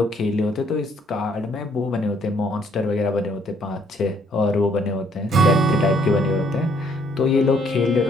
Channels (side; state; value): both; normal; correlation 0.66